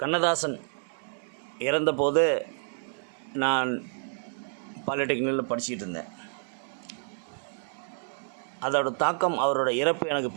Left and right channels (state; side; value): silent; left; digital silence